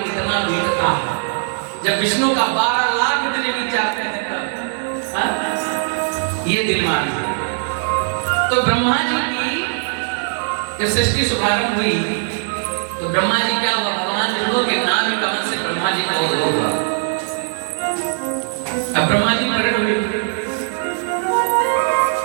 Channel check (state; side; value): silent; left; 66 dB below the other